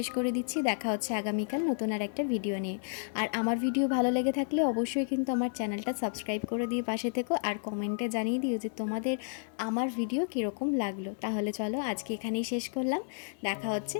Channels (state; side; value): silent; right; 57 dB below the other